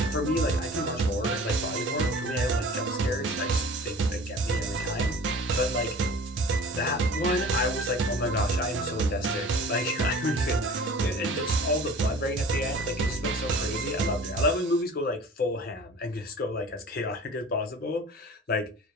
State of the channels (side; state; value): both; normal; correlation 0.42